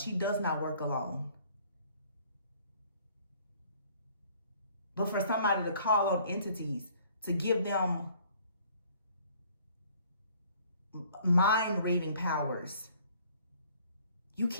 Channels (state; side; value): inverted; both; correlation -0.57